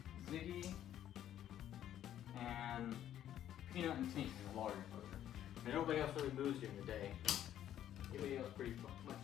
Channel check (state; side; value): quieter; right; 11.3 dB